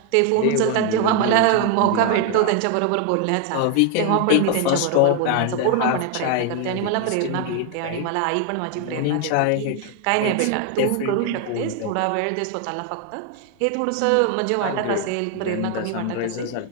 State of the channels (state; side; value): different; both; correlation 0.01